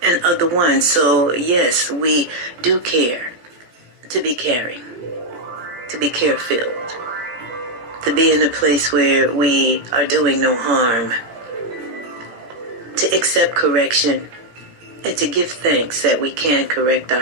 and other ones. So yes, we do care to be caring, to be care-filled, to be in a place where we are doing no harm, to accept correction, and to give thanks that we can correct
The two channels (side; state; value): left; late; 17 ms